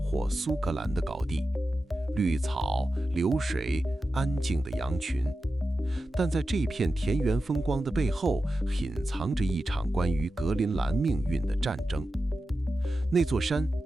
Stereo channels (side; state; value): both; normal; correlation 0.92